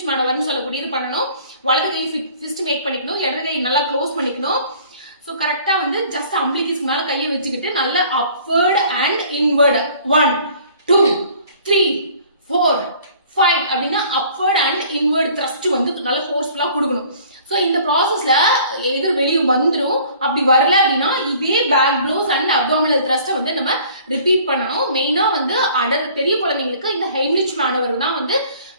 மேனவர்னு சொல்லக்கூடியது பண்ணணும். வலது கை ஃபிஸ்ட் மேக் பண்ணிக்கணும், இடது கை நல்லா க்ளோஸ் பண்ணிக்கணும். ஸோ கரெக்டா வந்து ஜஸ்ட் அம்பிளிகிஸ் மேல கையை வச்சுக்கிட்டு நல்ல அப்வர்ட் அண்ட் இன்வர்டு 1 2 3 4 5 அப்படின்னா அப்வர்ட் அண்ட் இன்வர்ட் த்ரஸ்ட் வந்து நல்லா ஃபோர்ஸ்ஃபுல்லா கொடுக்கணும். ஸோ இந்த ப்ராசஸ்ல எது வெளியே வந்துடும், அப்படி வரல அப்படின்னா இதே பேக் ப்ளவுஸ் அண்ட் அப்டாமினல் த்ரஸ்ட்டை வந்து நம்ம ரிப்பீட் பண்ணணும். மெயினா வந்து பெரிய குழந்தைங்களுக்கு இந்த ஹெய்ன்லிச் மேனவர் தான் வந்து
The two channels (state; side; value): inverted; both; correlation -0.52